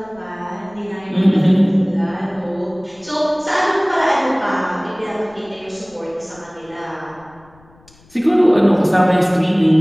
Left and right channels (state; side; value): noise; left; rumble, 29 dB below the sound